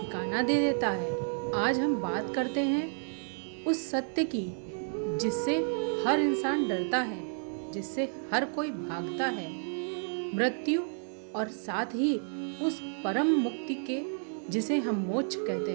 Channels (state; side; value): silent; left; 57 dB below the other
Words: दे देता है। आज हम बात करते हैं उस सत्य की जिससे हर इंसान डरता है, जिससे हर कोई भागता है, मृत्यु और साथ ही उस परम मुक्ति के जिसे हम मोक्ष कहते